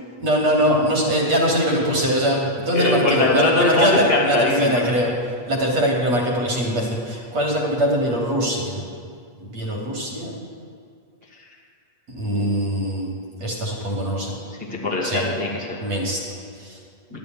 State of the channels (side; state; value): left; late; 8.4 ms